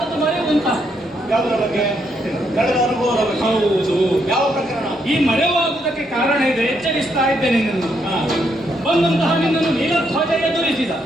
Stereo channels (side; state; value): both; normal; correlation 0.76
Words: ಮರೆವು ಅಂತ. ಯಾವುದರ ಬಗ್ಗೆ? ಕಳೆದ ಅನುಭವದ ಬಗ್ಗೆ. ಹೌದು. ಯಾವ ಪ್ರಕರಣ? ಈ ಮರೆವಾಗುವುದಕ್ಕೆ ಕಾರಣ ಇದೆ. ಎಚ್ಚರಿಸ್ತಾ ಇದ್ದೇನೆ ನಿನ್ನನ್ನು. ಬಂದಂತಹ ನಿನ್ನನ್ನು ನೀಲಧ್ವಜ ಎದುರಿಸಿದ.